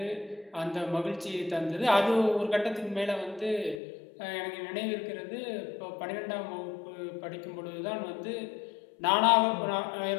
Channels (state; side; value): drops out; right; at 3.8 s